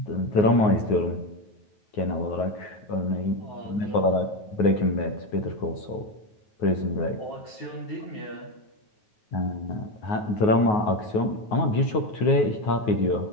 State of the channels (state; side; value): late; right; 9.4 ms